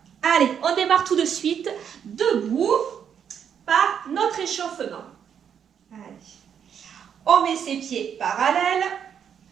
Allez, on démarre tout de suite, debout, par notre échauffement. Allez. On met ses pieds parallèles.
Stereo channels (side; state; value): left; quieter; 8.1 dB